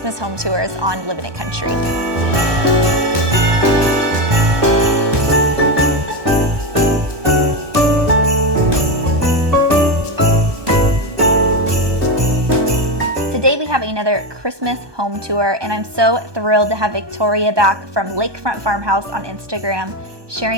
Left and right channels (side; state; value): left; late; 1.2 ms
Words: Home Tours on Living It Country. Today we have another Christmas home tour, and I'm so thrilled to have Victoria back from Lakefront Farmhouse on Instagram,